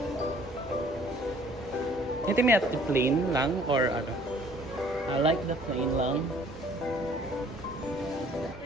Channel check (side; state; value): both; normal; correlation 0.56